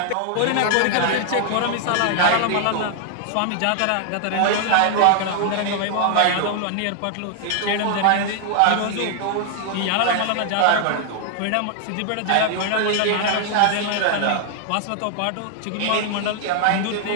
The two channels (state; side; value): different; both; correlation 0.00